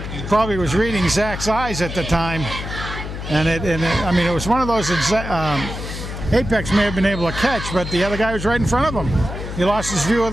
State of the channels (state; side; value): noise; left; hum, 7 dB below the sound